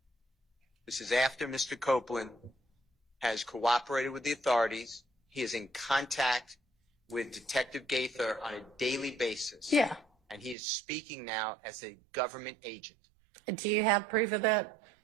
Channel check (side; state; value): left; drops out; at 10.6 s